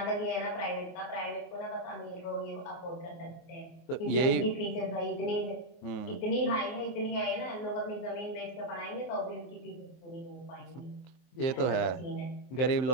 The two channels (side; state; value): right; late; 23 ms